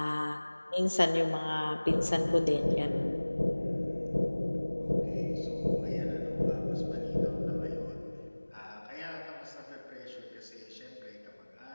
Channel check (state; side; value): inverted; both; correlation -1.00